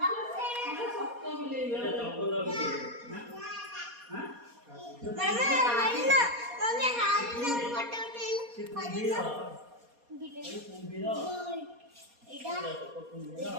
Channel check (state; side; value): late; left; 4.2 ms